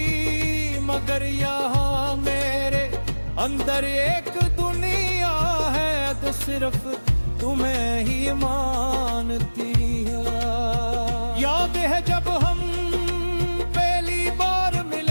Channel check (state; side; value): inverted; both; correlation -1.00